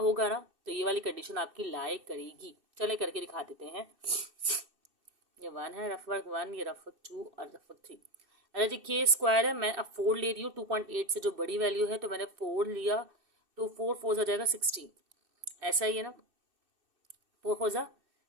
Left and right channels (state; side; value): late; left; 2.6 ms